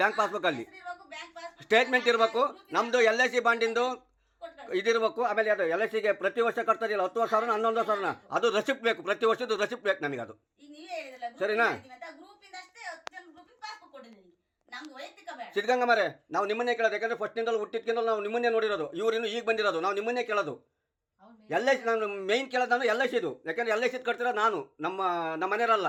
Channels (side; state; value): both; identical; correlation 1.00